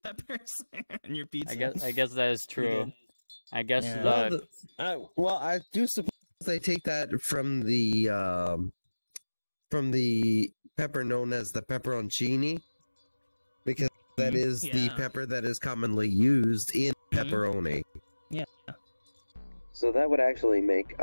peppers in your pizza. I guess that is true. I guess well, I do suppose they take that from the pepper known as the pepperoncini, because that is the pepper that is commonly used in pepperoni. Yeah. So that would actually make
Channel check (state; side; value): inverted; both; correlation -1.00